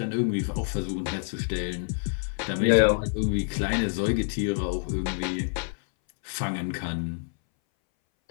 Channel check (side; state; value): right; silent; 60 dB below the other